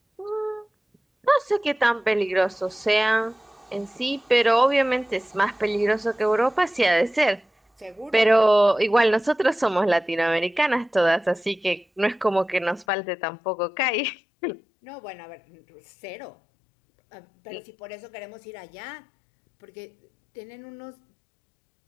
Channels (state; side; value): drops out; right; at 12.9 s